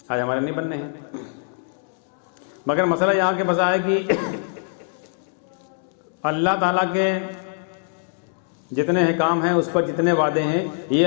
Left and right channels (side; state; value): right; silent; digital silence